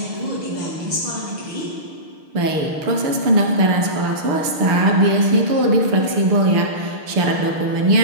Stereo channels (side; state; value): left; late; 6.6 ms